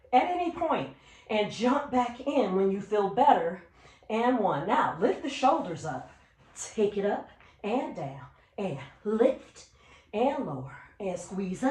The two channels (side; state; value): both; identical; correlation 1.00